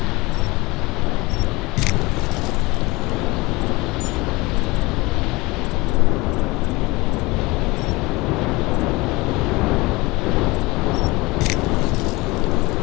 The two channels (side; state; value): right; quieter; 23.0 dB